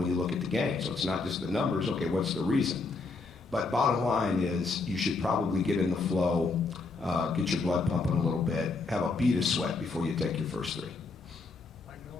you look at the game. So it's not just the numbers, okay, what's the reason? But bottom line is you should probably get in the flow, get your blood pumping a little bit, have a bead of sweat before you take your first three.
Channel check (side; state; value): right; quieter; 3.9 dB